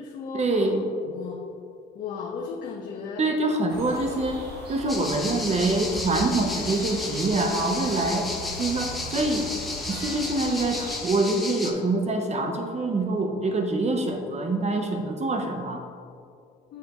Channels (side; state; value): both; normal; correlation 0.52